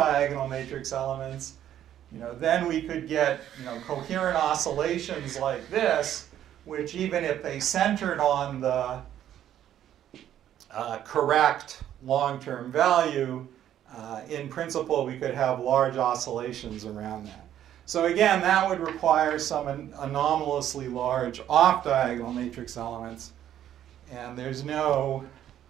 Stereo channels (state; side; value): quieter; left; 11.1 dB